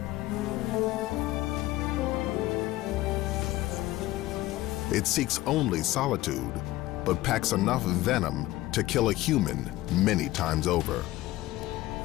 It seeks only solitude, but packs enough venom to kill a human many times over,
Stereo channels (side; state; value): right; quieter; 17.0 dB